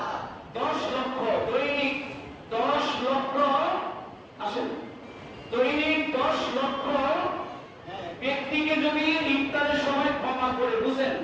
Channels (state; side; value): identical; both; correlation 1.00